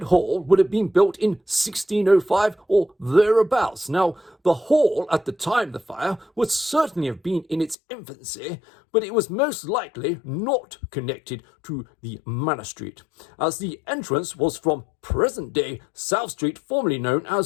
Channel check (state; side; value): drops out; right; at 7.8 s